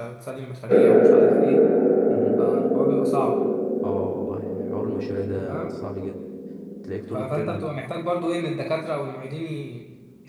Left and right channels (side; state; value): both; identical; correlation 1.00